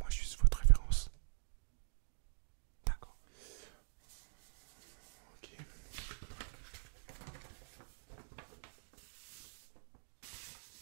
juste votre référence. D'accord. Ok.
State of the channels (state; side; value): silent; left; digital silence